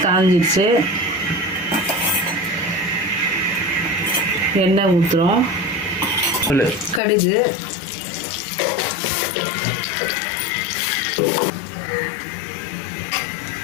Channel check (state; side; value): drops out; right; at 7.0 s